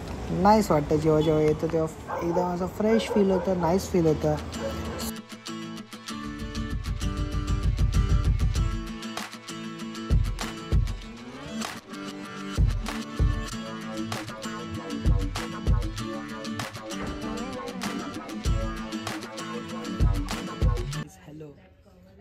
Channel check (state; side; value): identical; both; correlation 1.00